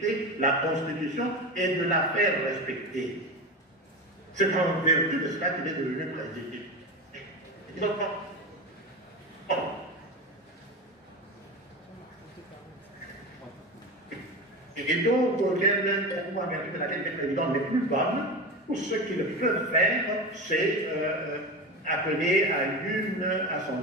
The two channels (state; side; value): normal; both; correlation 0.25